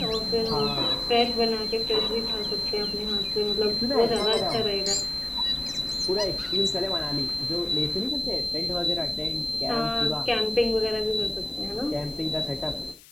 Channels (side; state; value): left; noise; hiss, 23 dB below the sound